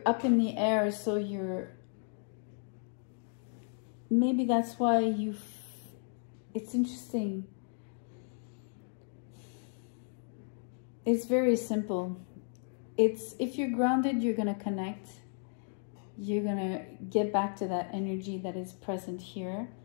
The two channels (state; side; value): silent; right; 55 dB below the other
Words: up in the air, so maybe that's why it's interesting. It's very simple. If you're grounded, you're going to connect. You're going to get back to that energy that is present here,